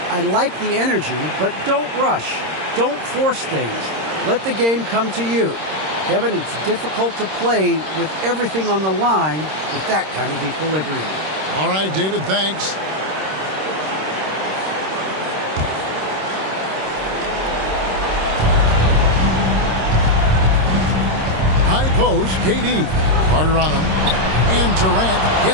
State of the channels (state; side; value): late; left; 26 ms